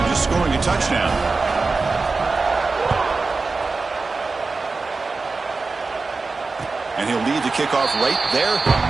just scoring a touchdown. And he'll lead the kickoff right there.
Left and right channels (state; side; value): quieter; left; 4.0 dB